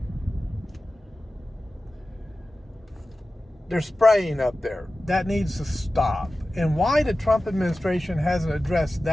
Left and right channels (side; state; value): both; normal; correlation 0.95